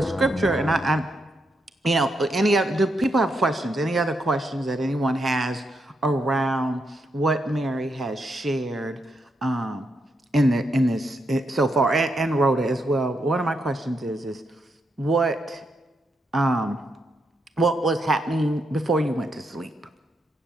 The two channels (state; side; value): normal; both; correlation 0.81